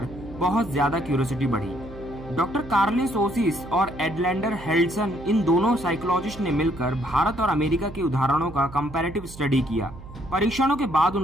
बहुत ज्यादा क्यूरियोसिटी बढ़ी। डॉक्टर कार्लिन ओसिस और एडलैंडर हेल्डसन, इन दोनों साइकोलॉजिस्ट ने मिलकर भारत और अमेरिका के उदाहरणों का कंपैरेटिव स्टडी किया। परीक्षणों के बाद उन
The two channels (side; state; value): right; noise; hum, 16 dB below the sound